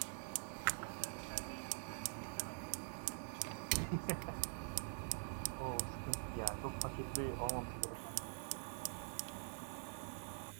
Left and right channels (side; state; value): left; silent; digital silence